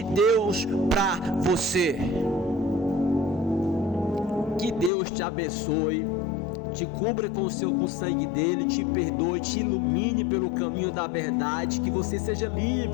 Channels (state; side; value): drops out; right; at 4.9 s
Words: Deus para você. Que Deus te abençoe, te cubra com o sangue dele, te perdoe, te ilumine pelo caminho da verdade, que você seja